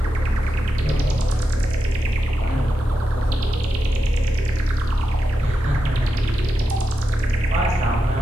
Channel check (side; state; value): both; normal; correlation 0.88